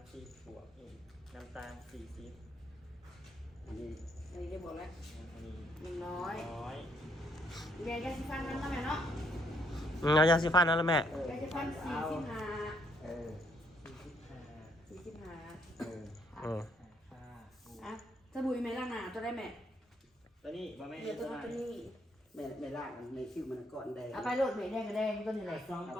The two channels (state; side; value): normal; both; correlation 0.70